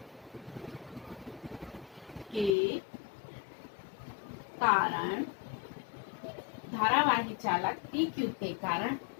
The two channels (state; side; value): drops out; right; at 2.6 s